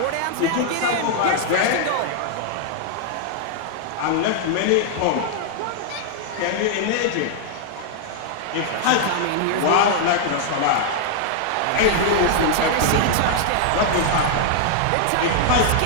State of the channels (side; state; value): both; different; correlation -0.01